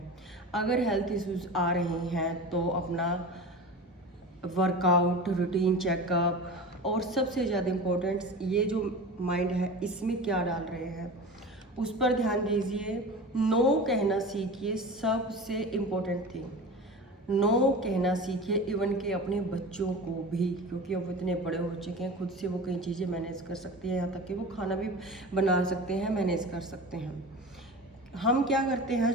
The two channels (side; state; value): both; normal; correlation 0.32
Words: अगर हेल्थ इश्यूज़ आ रहे हैं तो अपना वर्कआउट, रूटीन चेकअप, और सबसे ज़्यादा इम्पोर्टेंट ये जो माइंड है, इसमें क्या डाल रहे हैं उस पर ध्यान दीजिए। नो कहना सीखिए, सबसे इम्पोर्टेंट थिंग। नो कहना सीखिए, इवन के अपने बच्चों को भी, क्योंकि अब इतने बड़े हो चुके हैं, खुद से वो कई चीज़ें मैनेज कर सकती हैं, यहाँ तक कि वो खाना भी बना सकते हैं, मैनेज कर सकते हैं। हम क्या करते हैं,